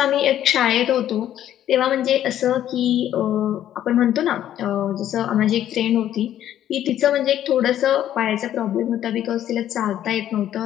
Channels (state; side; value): quieter; right; 11.5 dB